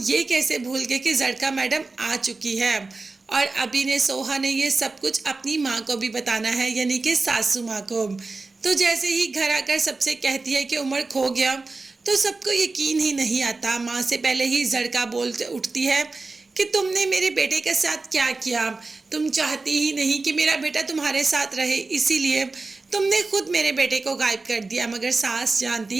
कैसे भूल गए कि जड़का मैडम आ चुकी है और अभी ने सोहा ने ये सब कुछ अपनी माँ को भी बताना है, यानी कि सासू माँ को। तो जैसे ही घर आकर सबसे कहती है कि उमर खो गया तो सबको यकीन ही नहीं आता। माँ से पहले ही जड़का बोल उठती है कि तुमने मेरे बेटे के साथ क्या किया, तुम चाहती ही नहीं कि मेरा बेटा तुम्हारे साथ रहे, इसीलिए तुमने खुद मेरे बेटे को गायब कर दिया। मगर सास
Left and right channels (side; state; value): left; quieter; 3.7 dB